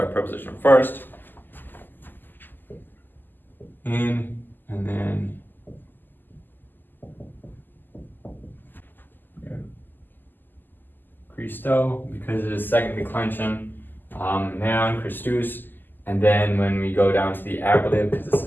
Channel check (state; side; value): late; right; 0.090 ms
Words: preposition first. In, and then Christo, because it is second declension. Noun, Christus. And then when we go down to the ablative, because this